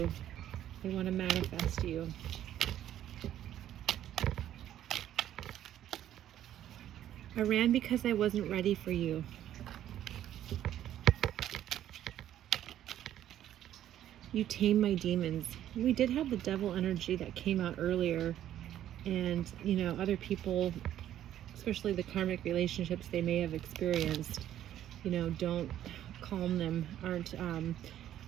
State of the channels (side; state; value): left; quieter; 11.7 dB